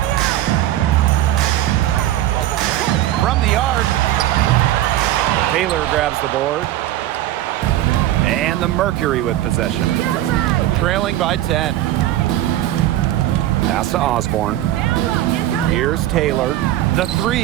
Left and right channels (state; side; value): quieter; left; 13.8 dB